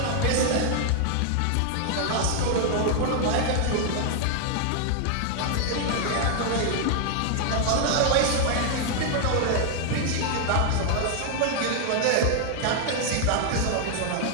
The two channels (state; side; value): different; both; correlation 0.00